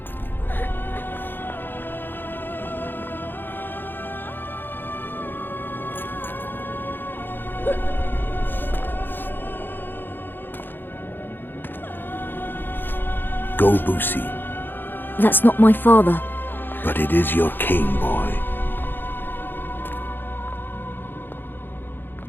Go, Boosie. That's not my father. But it is your king, boy.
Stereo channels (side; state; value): right; late; 0.097 ms